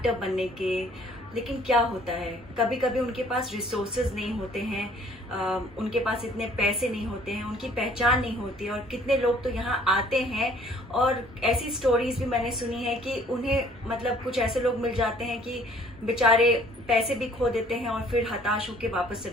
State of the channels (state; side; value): normal; both; correlation 0.57